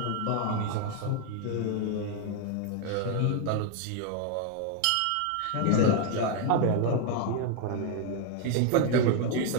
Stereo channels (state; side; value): different; both; correlation 0.01